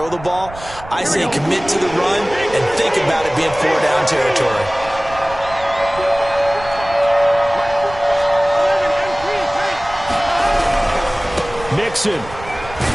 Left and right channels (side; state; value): right; noise; rumble, 16 dB below the sound